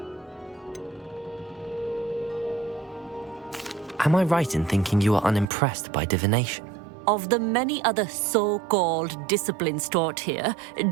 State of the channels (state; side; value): drops out; left; at 5.5 s